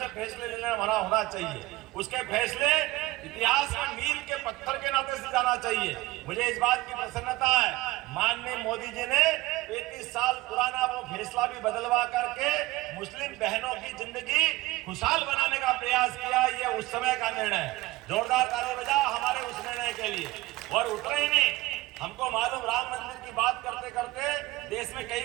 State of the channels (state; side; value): quieter; left; 19.2 dB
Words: फैसले लेने वाला होना चाहिए। उसके फैसले इतिहास में मील के पत्थर के नाते से जाना चाहिए। मुझे इस बात की प्रसन्नता है, माननीय मोदी जी ने 35 साल पुराना वो फैसला भी बदलवा करके मुस्लिम बहनों की जिंदगी खुशहाल बनाने का प्रयास किया। ये उस समय का निर्णय है। जोरदार ताली बजाओ हमारे उस निर्णय के लिए। और उतरे ही नहीं, हमको मालूम राम मंदिर की बात करते करते देश में कई